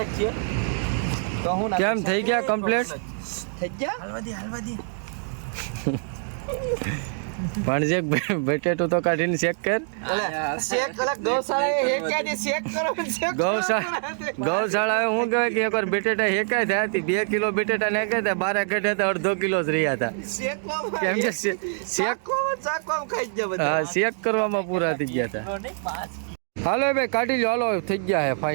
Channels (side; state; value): left; silent; 58 dB below the other